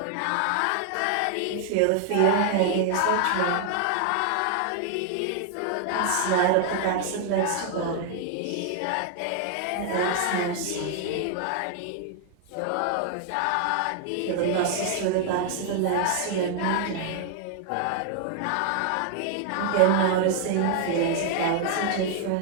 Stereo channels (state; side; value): different; both; correlation 0.00